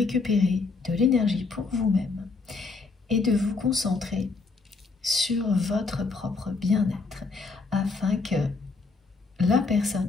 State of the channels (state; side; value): quieter; right; 4.1 dB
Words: de l'énergie pour vous-même et de vous concentrer sur votre propre bien-être afin que la